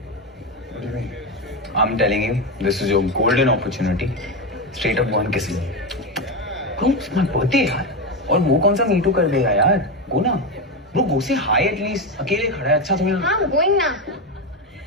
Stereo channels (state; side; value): normal; both; correlation 0.13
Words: What do you mean? I'm telling you this is your golden opportunity straight up go and kiss me bro it's my birthday यार और वो कौन सा मीटू कर देगा यार गो ना ब्रो गो से हाई एटलीस्ट अकेले खड़ा है अच्छा तुम्हें हाँ I'm going now